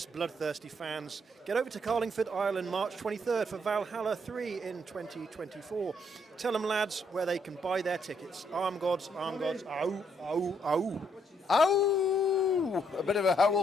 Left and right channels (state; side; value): normal; both; correlation 0.72